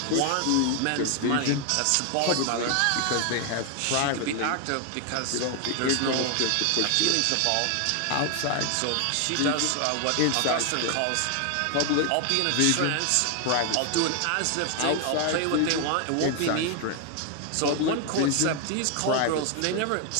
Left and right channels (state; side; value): different; both; correlation 0.00